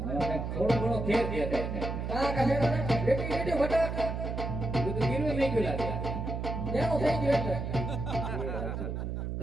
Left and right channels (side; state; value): right; noise; hum, 4 dB below the sound